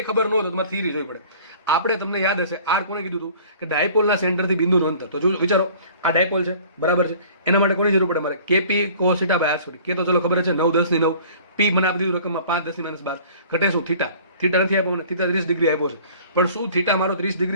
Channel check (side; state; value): both; inverted; correlation -0.49